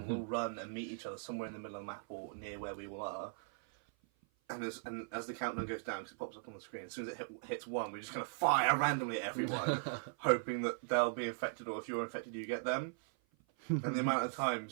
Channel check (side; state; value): left; silent; 52 dB below the other